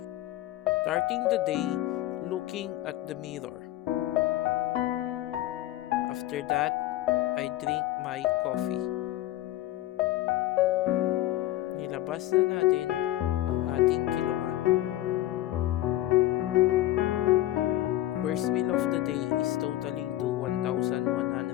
Starting the day looking at the mirror. After that, I drink my coffee. Nilabas na natin ang ating kiluman. First meal of the day is totaling to 1,100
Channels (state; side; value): quieter; right; 15.1 dB